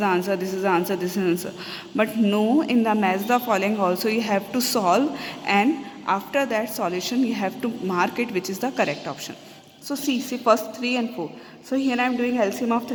answer, this is the answer, this is the answer. But no, in the match the following also you have to solve, and after that solution you have to mark it which is the correct option. So see first 3 and 4. So here I am doing LCM of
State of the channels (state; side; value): identical; both; correlation 1.00